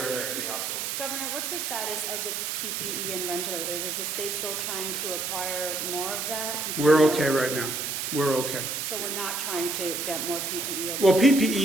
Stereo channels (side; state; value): right; noise; hiss, 2 dB below the sound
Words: Governor, what's the status of the PPE and ventilators? Is the state still trying to acquire more of that? We're okay right now. We're okay. So we're not trying to get more PPE? Well,